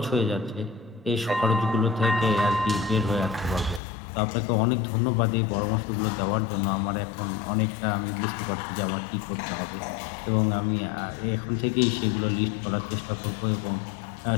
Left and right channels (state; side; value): drops out; right; at 3.8 s